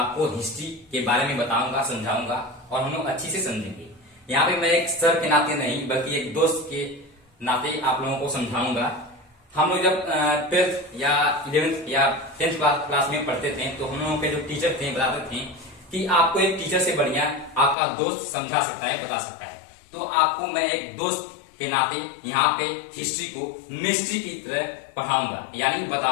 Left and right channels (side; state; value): right; drops out; at 17.8 s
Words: हिस्ट्री के बारे में बताऊंगा, समझाऊंगा और हम लोग अच्छी से समझेंगे। यहाँ पे मैं एक सर के नाते नहीं बल्कि एक दोस्त के नाते आप लोगों को समझाऊंगा। हम लोग जब 12th या 11th या 10th क्लास में पढ़ते थे तो हम लोगों के जो टीचर थे बताते थे कि आपको एक टीचर से बढ़िया आपका दोस्त समझा सकता है, बता सकता है। तो आपको मैं एक दोस्त के नाते यहाँ पे हिस्ट्री को मिस्ट्री की तरह पढ़ाऊंगा, यानी